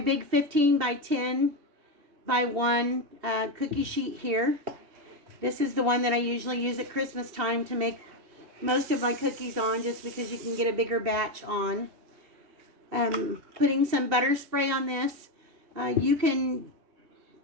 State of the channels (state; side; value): late; left; 2.7 ms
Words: big 15 by 10 by 1 cookie sheet here. This is the one that I usually use at Christmas time to make most of my cookies on, just because you can get a bigger batch on. Putting some butter spray on this. You can